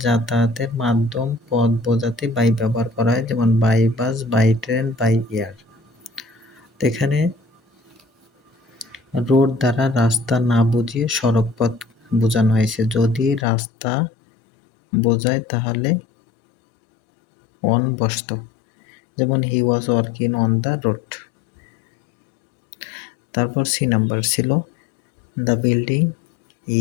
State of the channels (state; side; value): drops out; right; at 13.5 s